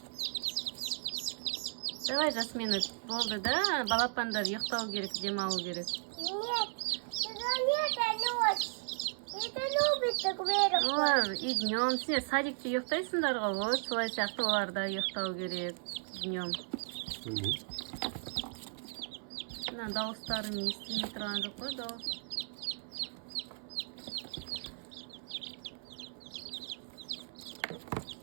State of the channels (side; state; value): left; silent; 54 dB below the other